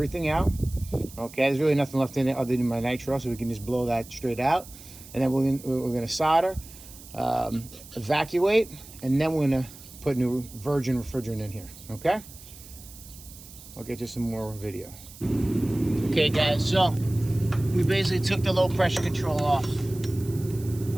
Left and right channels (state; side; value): noise; right; hiss, 18 dB below the sound